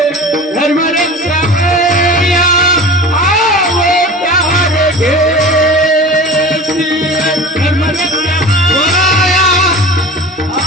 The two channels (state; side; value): normal; both; correlation 0.36